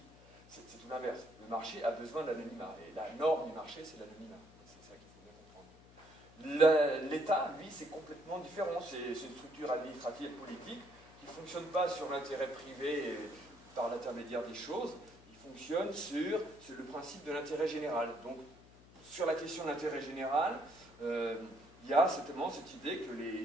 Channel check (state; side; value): noise; left; hum, 23 dB below the sound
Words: c'est tout l'inverse. Le marché a besoin d'anonymat, et la norme du marché, c'est l'anonymat. C'est ça qu'il faut bien comprendre. L'État, lui, c'est complètement différent, c'est une structure administrative et politique qui ne fonctionne pas sur l'intérêt privé par l'intermédiaire des choses, il fonctionne sur le principe de l'intérêt général. Donc, sur la question de l'intérêt général, il y a certainement cette idée que